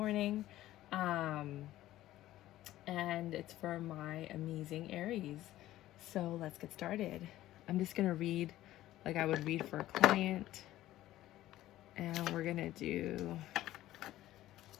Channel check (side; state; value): right; quieter; 14.7 dB